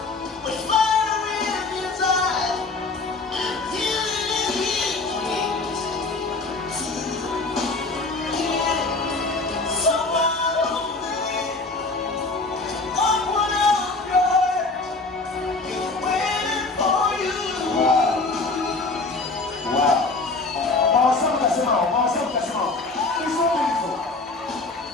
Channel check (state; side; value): quieter; right; 3.6 dB